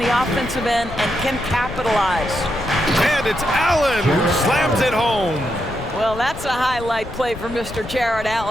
offensive end and can capitalize. And it's Allen who slams it home. Well, that's a highlight play for Mr. Jared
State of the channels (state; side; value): noise; left; rumble, 13 dB below the sound